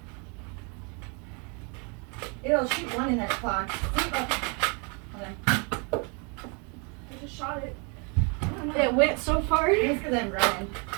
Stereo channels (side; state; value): left; quieter; 34.6 dB